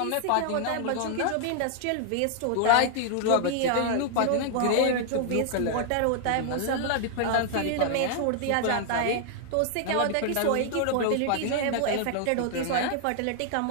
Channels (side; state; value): both; different; correlation 0.00